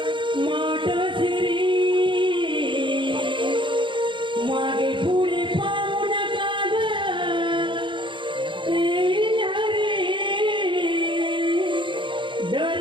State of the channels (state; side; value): late; left; 0.24 ms